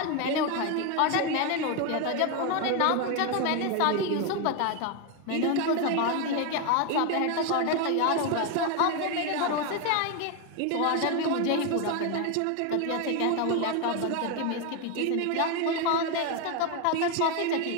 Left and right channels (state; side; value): different; both; correlation 0.01